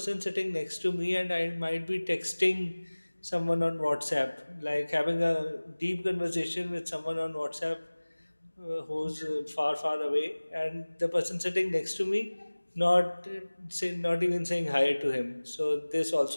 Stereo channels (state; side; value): inverted; both; correlation -1.00